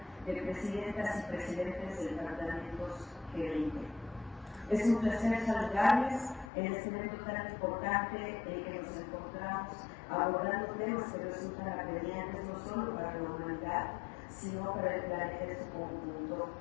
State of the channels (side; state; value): right; drops out; at 6.5 s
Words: de presidentas y presidentes de departamentos G20. Es un placer saludarles en este evento tan importante en el que nos encontramos abordando temas que resultan apremiantes no solo para la humanidad, sino para el planeta en su conjunto.